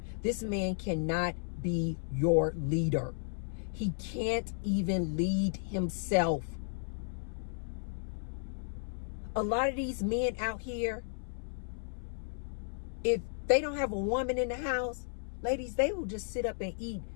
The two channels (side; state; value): right; silent; 55 dB below the other